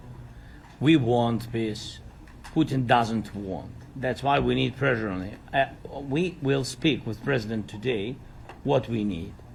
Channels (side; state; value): both; identical; correlation 1.00